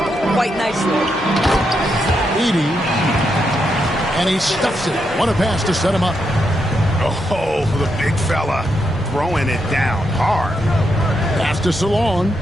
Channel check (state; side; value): normal; both; correlation 0.82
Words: quite nicely. Edey. And he stuffs it. What a pass to set him up. Oh, the big fella throwing it down hard. Pass to Salon.